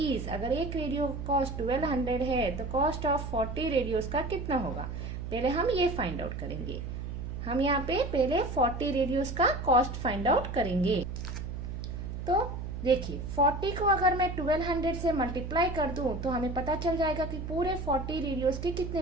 अगर एक रेडियो कॉस्ट 1200 है तो कॉस्ट ऑफ 40 रेडियोस का कितना होगा, पहले हम ये फाइंड आउट करेंगे। हम यहाँ पे पहले 40 रेडियोस का कॉस्ट फाइंड आउट करेंगे। तो देखिए 40 को अगर मैं 1200 से मल्टीप्लाई कर दूं तो हमें पता चल जाएगा कि पूरे 40 रेडियोस के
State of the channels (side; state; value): right; noise; hum, 6 dB below the sound